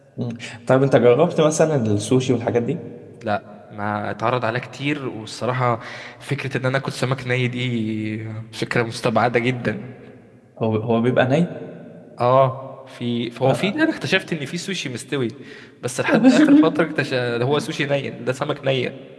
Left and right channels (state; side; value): identical; both; correlation 1.00